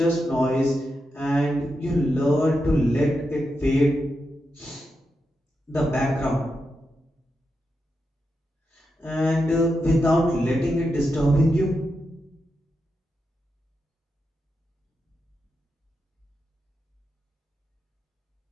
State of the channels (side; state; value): both; normal; correlation 0.87